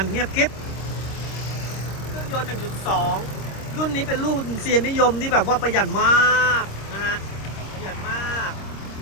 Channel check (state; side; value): late; right; 26 ms